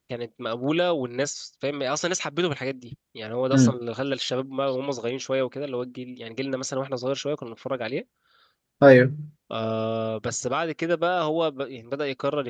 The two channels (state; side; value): identical; both; correlation 1.00